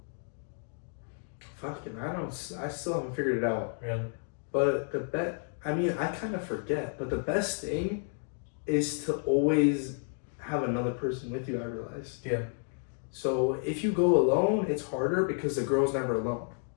Fucking, I still haven't figured it out. Really? But I kind of forget, but the best thing is to always have another person with you, I realized. Yeah. So if you go alone, it's harder because the girl's never alone.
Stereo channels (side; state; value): right; silent; 57 dB below the other